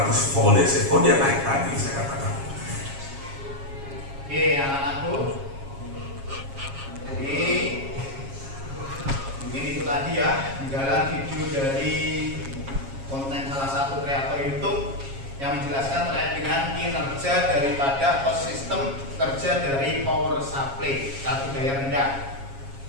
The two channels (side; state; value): left; late; 7.3 ms